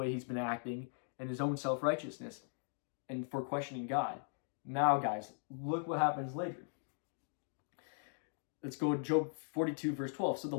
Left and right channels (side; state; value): right; silent; digital silence